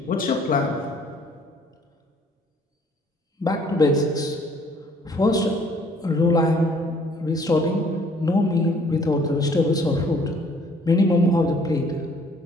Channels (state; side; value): normal; both; correlation 0.59